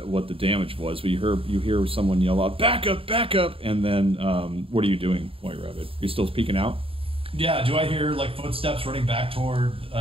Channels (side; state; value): left; late; 0.27 ms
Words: the damage was, but you hear someone yell out, "Backup, backup!" And then what are you doing, White Rabbit? Are you still peeking out? Yeah. Do I hear like footsteps running back toward